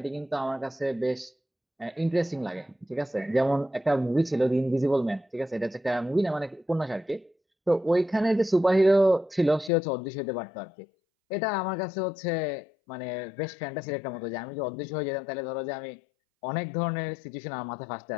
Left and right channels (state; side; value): drops out; right; at 9.7 s